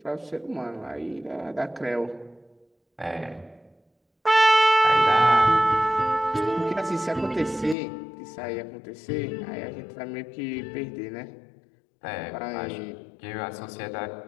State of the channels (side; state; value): right; drops out; at 7.8 s